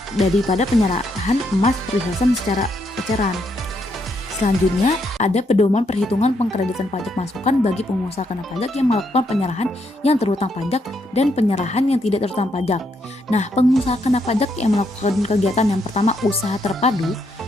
penyerahan emas perhiasan secara eceran. Selanjutnya, ada pedoman perhitungan pengkreditan pajak masukan bagi pengusaha kena pajak yang melakukan penyerahan yang terutang pajak dan penyerahan yang tidak terutang pajak. Nah, pengusaha kena pajak yang melakukan kegiatan yang pertama, usaha terpadu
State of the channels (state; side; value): normal; both; correlation 0.76